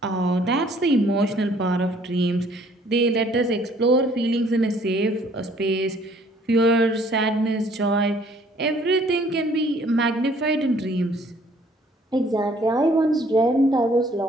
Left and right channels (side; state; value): both; normal; correlation 0.60